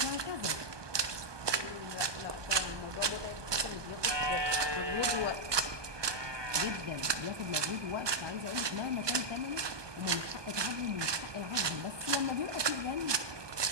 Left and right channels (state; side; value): late; left; 1.2 ms